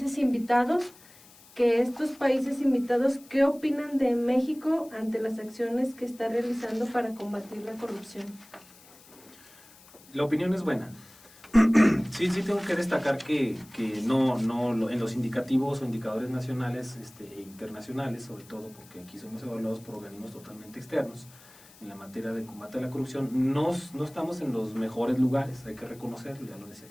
invitados, que estos países invitados, ¿qué opinan de México ante las acciones que está realizando para combatir la corrupción? La opinión es buena. Sí, tengo que destacar que no en los indicativos o indicadores nacionales e internacionales, sobre todo porque aquí somos evaluados por organismos totalmente externos, en la materia de combate a la corrupción, no estamos en los mejores lugares, hay que reconocerlo, ya lo decía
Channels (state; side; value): noise; left; hiss, 24 dB below the sound